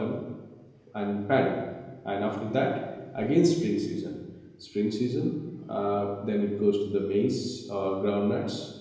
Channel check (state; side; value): identical; both; correlation 1.00